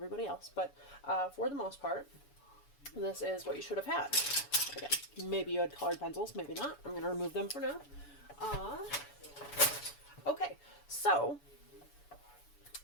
else. But for the most part, this is what you should have had. Again, maybe you had colored pencils, maybe not. I'm going to remove them for now. Okay, so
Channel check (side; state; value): right; late; 7.0 ms